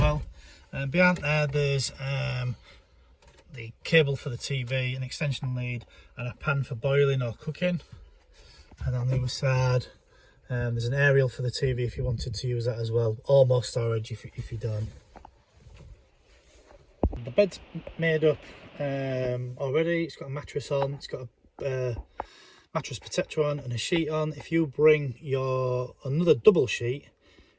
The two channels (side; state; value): both; identical; correlation 1.00